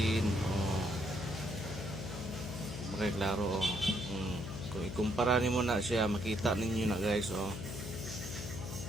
Okay, klaro. Kung ikumpara nimo na siya, makita ninyo na guys.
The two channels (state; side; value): noise; left; hum, 7 dB below the sound